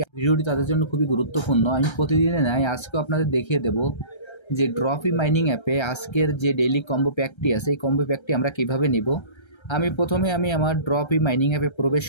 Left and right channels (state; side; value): late; right; 1.3 ms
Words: ভিডিওটি তাদের জন্য খুবই গুরুত্বপূর্ণ। আমি প্রতিদিনে নাই, আজকেও আপনাদের দেখিয়ে দেব যে ড্রপি মাইনিং অ্যাপে আজকের যে ডেইলি কম্বো প্যাকটি আছে এই কম্বো প্যাকটি আমরা কিভাবে নিব। প্রথমে আমার ড্রপি মাইনিং অ্যাপে প্রবেশ